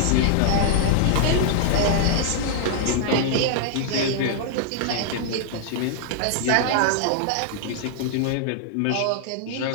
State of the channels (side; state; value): both; different; correlation -0.01